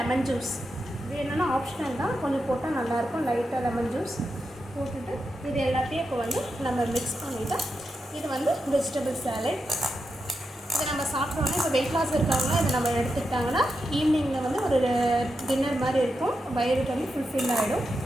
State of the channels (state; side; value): normal; both; correlation 0.87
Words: ஜூஸ், இது என்னென்னா ஆப்ஷனல் தான், கொஞ்சம் போட்டால் நல்லாயிருக்கும். லைட்டாக லெமன் ஜூஸ் போட்டுட்டு இது எல்லாத்தையும் இப்போ வந்து நம்ம மிக்ஸ் பண்ணிவிட்டு, இது வந்து வெஜிடபிள் சாலட். இதை நம்ம சாப்பிட்டோன்னே இப்போ வெயிட் லாஸ் இருக்காங்கன்னா இதை நம்ம எடுத்துக்கிட்டாங்கன்னா ஈவினிங்கில் வந்து ஒரு டின்னர் மாதிரி இருக்கும், வயிறு வந்து ஃபுல்ஃபில் ஆகிடும்.